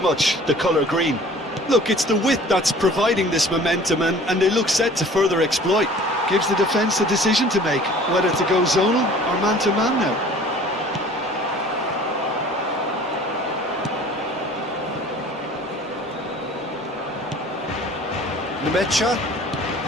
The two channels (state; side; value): normal; both; correlation 0.48